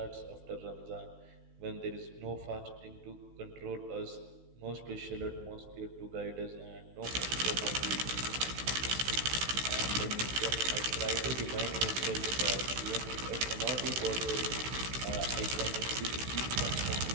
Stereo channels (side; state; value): left; late; 16 ms